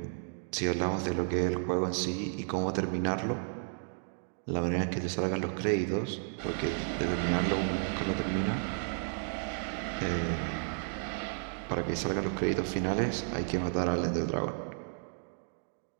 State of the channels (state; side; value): silent; left; 56 dB below the other